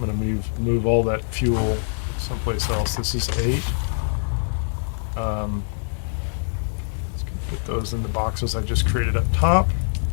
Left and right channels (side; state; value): right; silent; 63 dB below the other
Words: move all that fuel someplace else. This is 8. Let's put those in the boxes I just created up top.